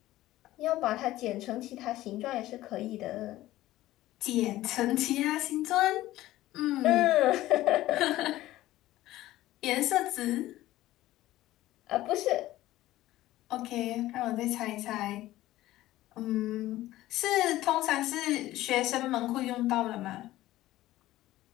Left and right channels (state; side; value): quieter; right; 15.7 dB